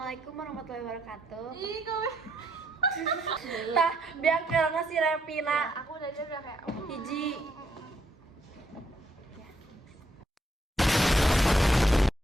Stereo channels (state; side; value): normal; both; correlation 0.74